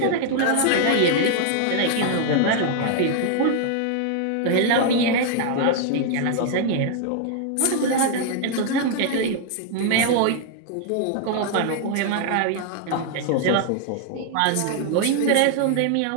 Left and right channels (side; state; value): both; different; correlation 0.00